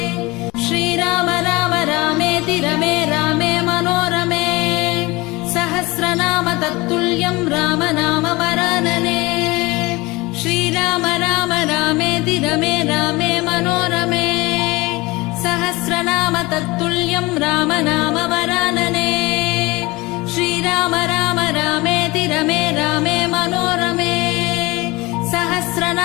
श्रीराम राम रामेति रमे रामे मनोरमे सहस्रनाम तत्तुल्यं राम नाम वरानने श्रीराम राम रामेति रमे रामे मनोरमे सहस्रनाम तत्तुल्यं राम नाम वरानने श्रीराम राम रामेति रमे रामे मनोरमे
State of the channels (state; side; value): quieter; right; 22.7 dB